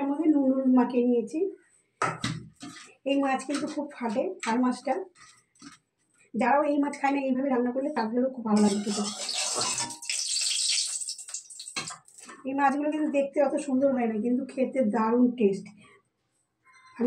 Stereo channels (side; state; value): both; identical; correlation 1.00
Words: মধ্যে নুন হলুদ মাখিয়ে নিয়েছি। এই মাছ কিন্তু খুব ফাটে, আর মাছটা যারাও এই মাছ খায় না এইভাবে রান্না করলে তাদেরও খুব ভালো লাগে খেতে। এই মাছগুলো কিন্তু দেখতে অত সুন্দর হয় না, কিন্তু খেতে দারুণ টেস্ট।